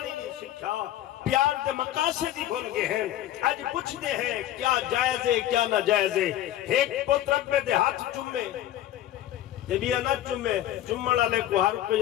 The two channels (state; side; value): quieter; right; 13.0 dB